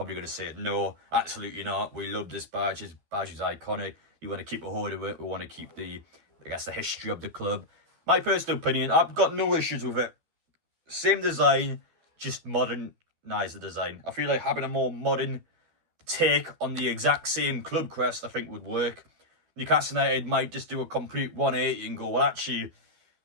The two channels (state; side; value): late; left; 12 ms